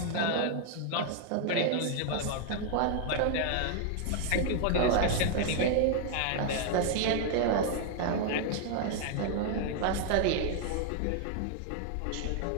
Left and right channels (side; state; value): both; different; correlation 0.00